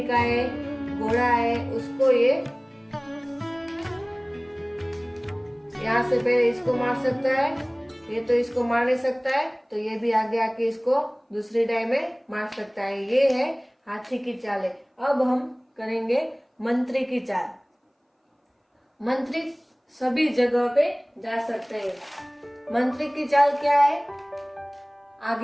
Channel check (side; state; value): both; identical; correlation 1.00